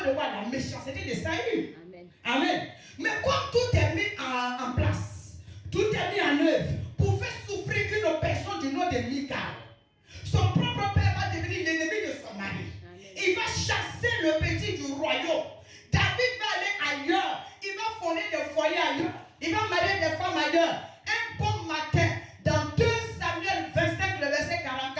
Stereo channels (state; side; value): identical; both; correlation 1.00